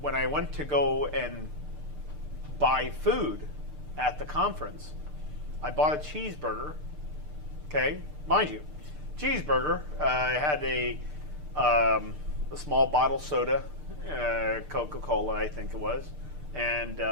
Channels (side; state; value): left; late; 6.7 ms